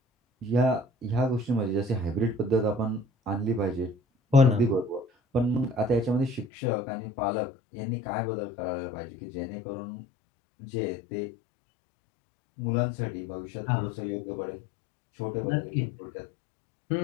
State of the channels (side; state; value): right; drops out; at 6.5 s